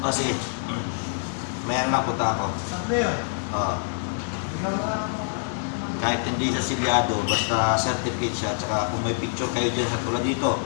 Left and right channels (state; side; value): silent; right; digital silence